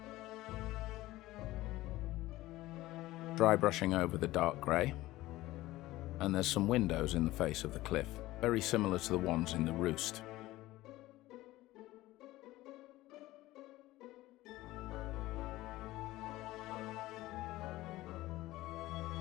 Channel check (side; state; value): right; quieter; 17.3 dB